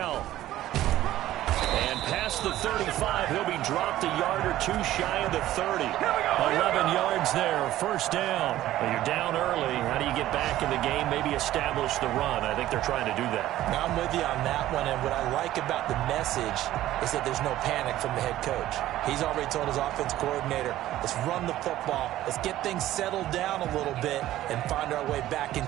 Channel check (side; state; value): left; quieter; 14.2 dB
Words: And past the 35, he'll be dropped a yard or two shy of the 30. 11 yards there, first down. Well, you're down early. How do you get back in the game? Maybe establish the run. I think they're trying to do that. Now I'm with you on that one, and what I like about the message is that there's no panic from the head coach. He's already told his offense coordinator, let's run the football, let's get things settled down a little bit and find our way back